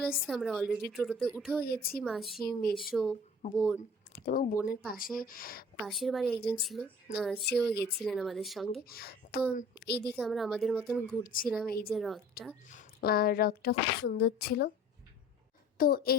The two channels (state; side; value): normal; both; correlation 0.47